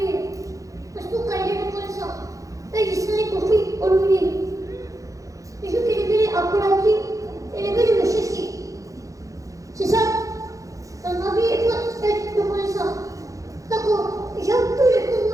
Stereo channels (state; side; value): late; left; 0.16 ms